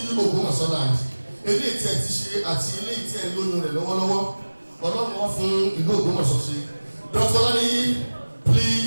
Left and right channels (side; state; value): both; inverted; correlation -1.00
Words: Ògbómọ̀ṣọ́ land. Eléyìí tí ẹ ti ṣe àti eléyìí tí ẹ ń lóyún rẹ̀ lọ́wọ́lọ́wọ́. Ọlọ́run wọn fún ìlú Ògbómọ̀ṣọ́ ṣe. Dr. Olaniyi,